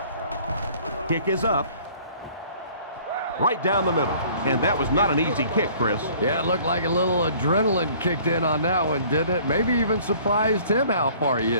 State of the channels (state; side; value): inverted; both; correlation -0.53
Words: Kick is up. Right down the middle. And that was not an easy kick, Chris. Yeah, it looked like a little adrenaline kicked in on that one, didn't it? Maybe even surprised him how far he